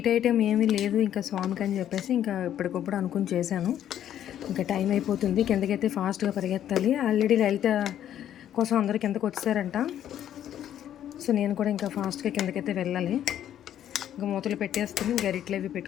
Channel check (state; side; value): quieter; right; 10.8 dB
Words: ఐటెం ఏమీ లేదు ఇంకా స్వామికి అని చెప్పేసి ఇంకా ఇప్పటికప్పుడు అనుకుని చేశాను. ఇంకా టైం అయిపోతుంది, కిందకైతే ఫాస్ట్గా పరిగెత్తాలి. ఆల్రెడీ లలిత కోసం అందరూ కిందకు వచ్చారంట. సో నేను కూడా ఇంకా ఫాస్ట్గా కిందకైతే వెళ్ళాలి. ఇంకా మూతలు పెట్టేసుకుని గరిట్లు అవి